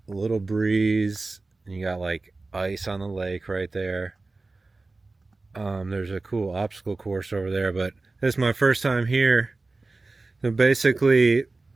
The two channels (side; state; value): left; quieter; 3.4 dB